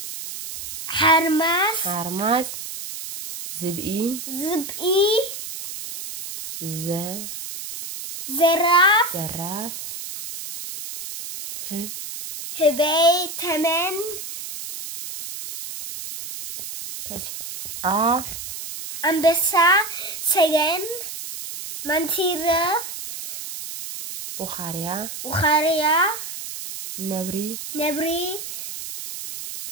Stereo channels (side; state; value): right; noise; hiss, 9 dB below the sound